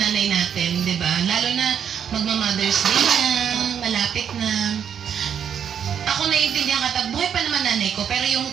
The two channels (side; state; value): left; quieter; 8.2 dB